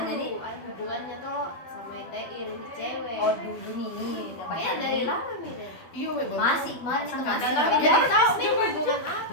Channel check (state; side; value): late; right; 12 ms